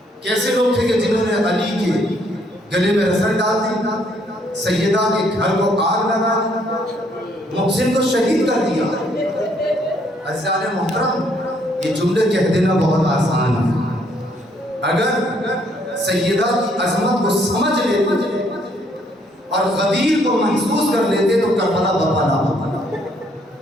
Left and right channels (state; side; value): normal; both; correlation 0.68